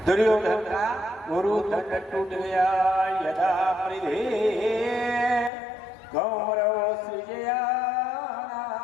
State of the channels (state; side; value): drops out; right; at 5.5 s